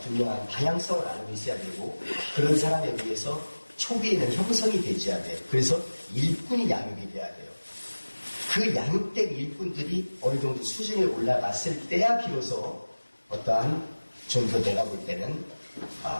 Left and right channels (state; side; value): inverted; both; correlation -1.00